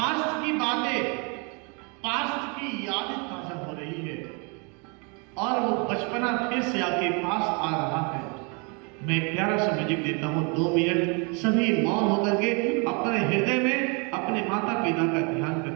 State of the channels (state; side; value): quieter; left; 33.5 dB